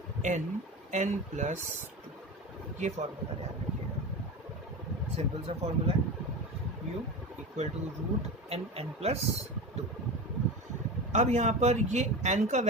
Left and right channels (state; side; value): normal; both; correlation 0.26